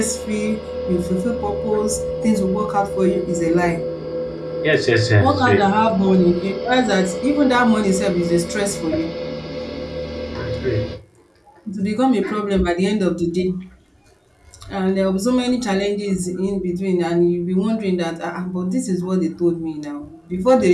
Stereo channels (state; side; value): identical; both; correlation 1.00